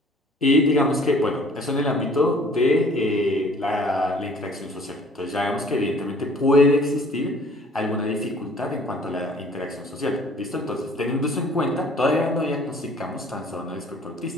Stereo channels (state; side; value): normal; both; correlation 0.54